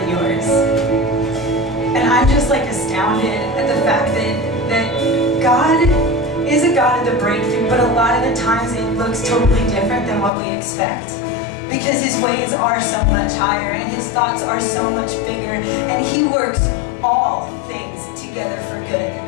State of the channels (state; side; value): drops out; right; at 10.3 s